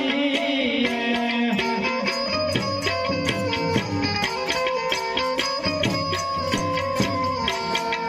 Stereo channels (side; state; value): both; identical; correlation 1.00